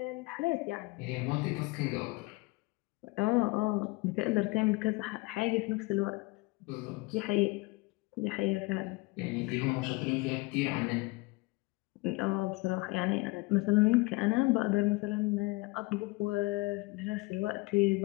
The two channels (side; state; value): right; quieter; 24.1 dB